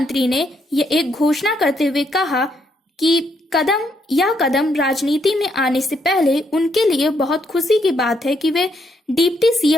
ने यह एक घोषणा करते हुए कहा कि यह कदम राजनीति में आने से पहले उनके लिए बहुत खुशी की बात है कि वे डिप्टी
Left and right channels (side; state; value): both; normal; correlation 0.74